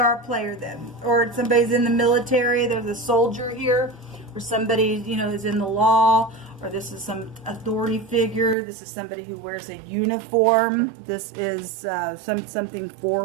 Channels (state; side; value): drops out; left; at 8.6 s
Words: a player then. Or somebody's in the military. There's a soldier here. Or somebody, you know, is in the law. Or this is some authority figure. This is somebody who wears a uniform. This is something